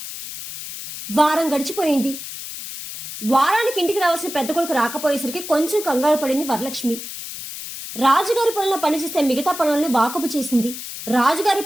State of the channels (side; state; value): left; noise; hiss, 9 dB below the sound